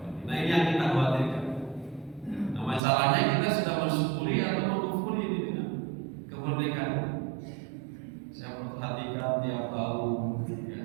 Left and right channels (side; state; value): left; drops out; at 2.8 s